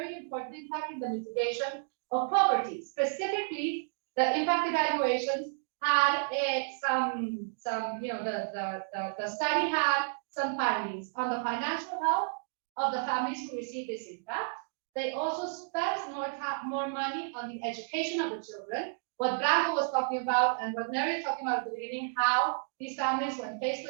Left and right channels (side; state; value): left; silent; digital silence